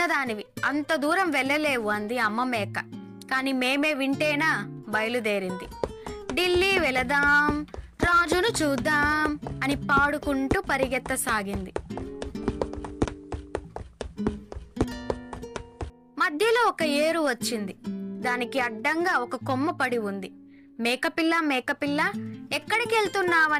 అంత దూరం వెళ్ళలేవు అంది అమ్మ మేక. కాని మేమే వింటేనా బయలుదేరింది. ఢిల్లీ వెళదాం, రాజును చూద్దాం అని పాడుకుంటూ పరిగెత్తసాగింది. మధ్యలో ఒక ఏరు వచ్చింది. దానికి అడ్డంగా ఒక కొమ్మ పడి ఉంది. మేకపిల్ల మేకపిల్ల, ఎక్కడికి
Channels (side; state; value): both; identical; correlation 1.00